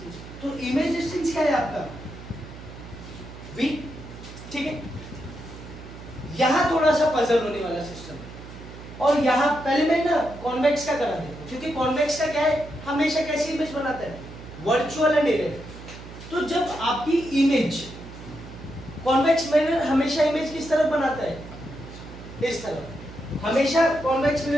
तो इमेज डिस्टेंस क्या है आपका, v। ठीक है, यहां थोड़ा सा पजल होने वाला सिस्टम है, और यहां पहले मैं ना कॉन्वेक्स का करा देता हूं, क्योंकि कॉन्वेक्स का क्या है, हमेशा कैसी इमेज बनाता है, वर्चुअल एंड इरेक्ट। तो जब आपकी इमेज, कॉन्वेक्स मिरर हमेशा इमेज किस तरफ बनाता है, इस तरफ। हमेशा कॉन्वेक्स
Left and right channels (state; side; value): noise; right; hum, 14 dB below the sound